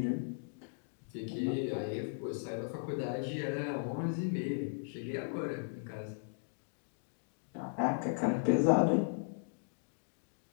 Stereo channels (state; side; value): silent; right; digital silence